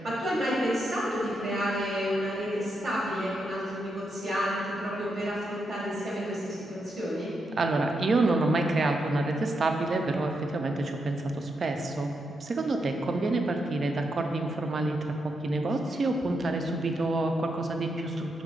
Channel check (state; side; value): normal; both; correlation 0.83